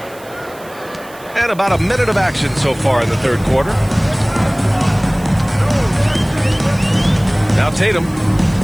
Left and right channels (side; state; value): right; noise; hiss, 22 dB below the sound